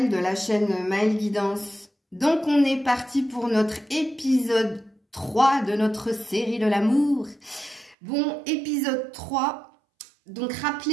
de la chaîne Maëlle Guidance. Donc on est parti pour notre épisode 3 de notre série de l'amour. Bon, épisode 3, donc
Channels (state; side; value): drops out; left; at 8.0 s